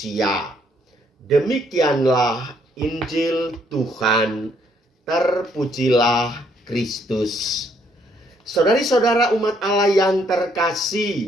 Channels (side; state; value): both; normal; correlation 0.69